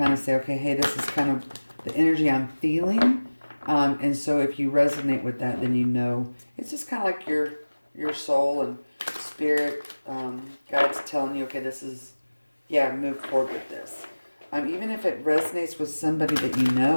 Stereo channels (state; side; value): inverted; both; correlation -1.00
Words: of say, okay, hey, this is kind of the energy I'm feeling. And so if you resonate with that, then it's just kind of like your soul and spirit guides telling you, okay, move forward with this. Even if it resonates with somebody that you